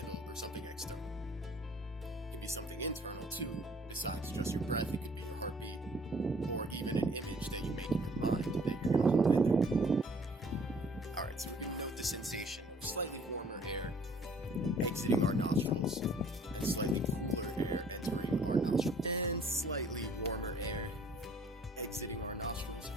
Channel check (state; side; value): normal; both; correlation 0.56